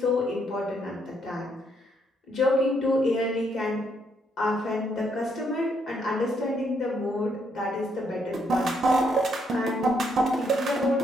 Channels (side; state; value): both; normal; correlation 0.74